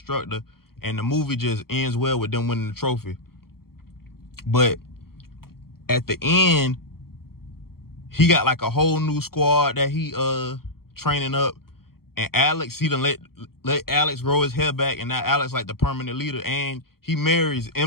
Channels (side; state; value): right; late; 0.94 ms